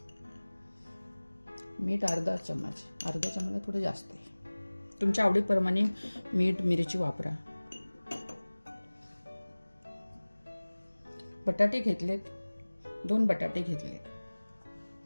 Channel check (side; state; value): both; inverted; correlation -1.00